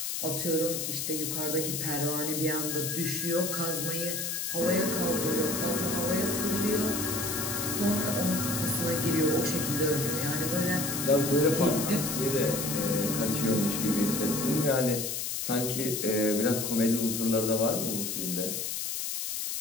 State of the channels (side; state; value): left; noise; hiss, 2 dB below the sound